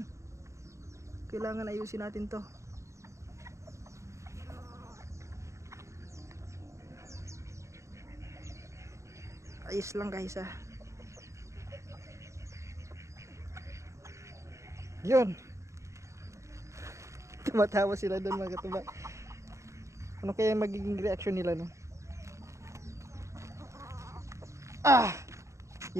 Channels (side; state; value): left; late; 0.14 ms